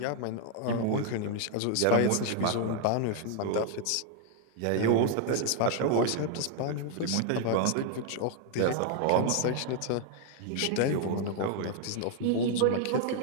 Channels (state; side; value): different; both; correlation 0.00